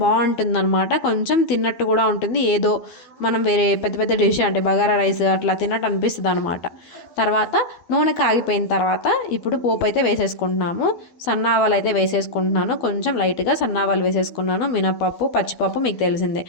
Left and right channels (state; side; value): late; right; 12 ms